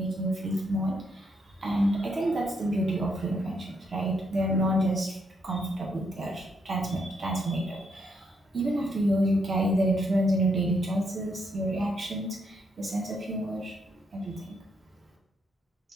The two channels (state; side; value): normal; both; correlation 0.76